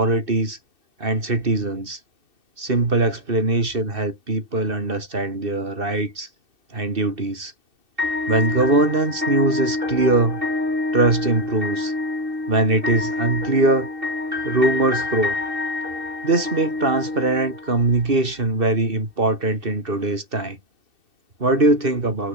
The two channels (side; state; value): left; late; 2.6 ms